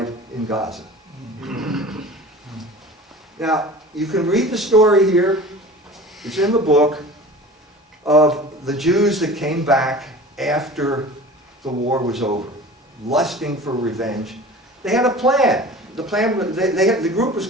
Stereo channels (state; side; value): normal; both; correlation 0.39